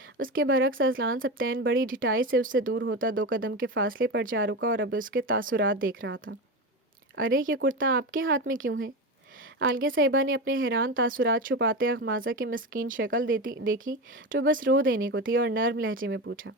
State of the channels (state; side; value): normal; both; correlation 0.21